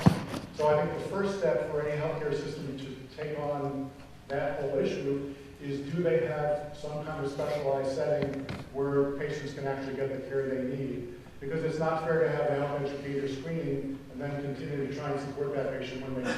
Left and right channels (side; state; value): both; identical; correlation 1.00